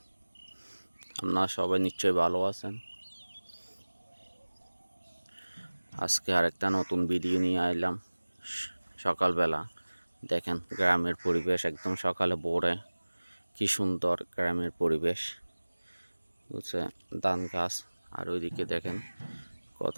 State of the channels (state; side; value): inverted; both; correlation -1.00